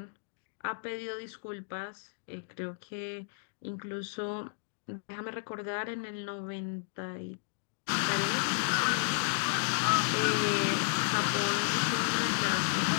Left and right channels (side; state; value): right; silent; digital silence